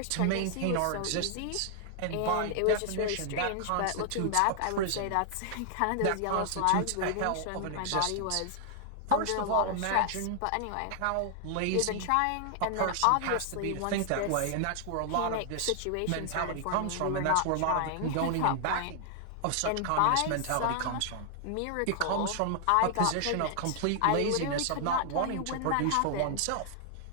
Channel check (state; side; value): different; both; correlation 0.00